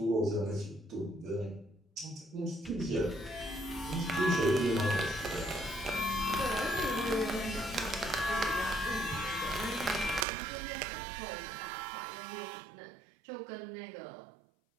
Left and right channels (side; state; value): left; drops out; at 10.2 s